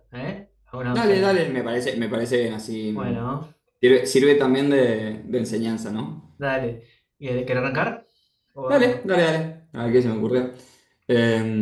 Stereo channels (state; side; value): identical; both; correlation 1.00